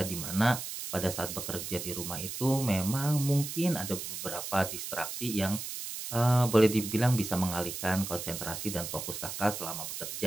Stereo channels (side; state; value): right; noise; hiss, 6 dB below the sound